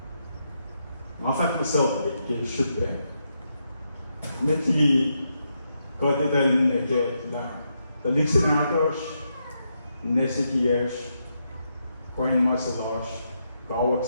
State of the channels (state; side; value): inverted; both; correlation -0.82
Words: Ma fact myself it should be. Meti God ital ne kaya na the listeners nesitiers coin masalas kawak